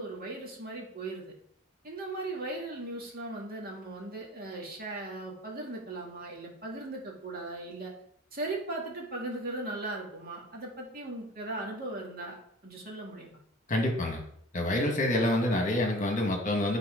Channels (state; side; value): normal; both; correlation 0.43